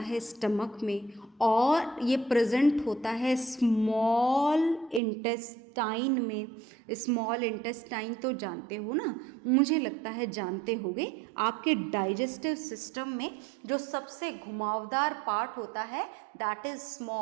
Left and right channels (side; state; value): left; drops out; at 5.0 s